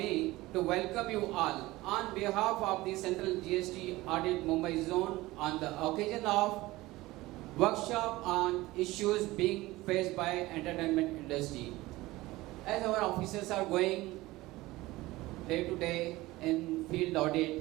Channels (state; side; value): quieter; left; 19.1 dB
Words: to welcome you all on behalf of the Central GST Audit Mumbai Zone on the occasion of workshop on issues being faced by entertainment industry. As our officers are going day to day in field